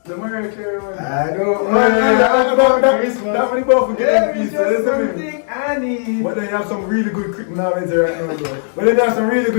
The Mariah Carey one. I don't That Christmas. one both forget Yeah, them it's pieces. just Listen to me. something I need. But then you have some really good right now, bro. But then you have some really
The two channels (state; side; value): silent; right; digital silence